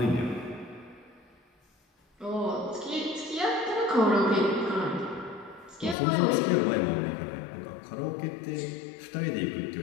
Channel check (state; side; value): drops out; right; at 6.0 s